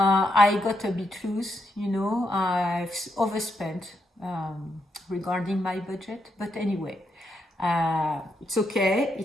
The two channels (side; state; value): both; normal; correlation 0.80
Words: got a bit loose, I've overspent regarding my budget, but anyway, it's okay.